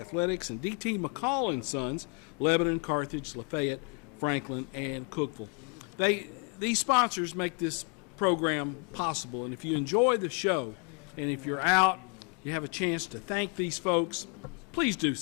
and D.T. McCall & Sons, Lebanon, Carthage, Lafayette, Franklin, and Cookeville. These sponsors make this program possible, and if you enjoy the show and if you're out, you have a chance to thank these folks, please do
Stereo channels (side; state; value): right; quieter; 37.5 dB